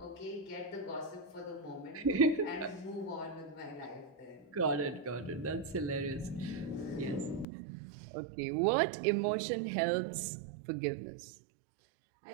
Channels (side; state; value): left; drops out; at 7.5 s